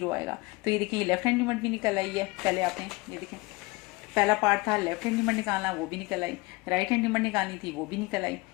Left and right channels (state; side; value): quieter; right; 24.0 dB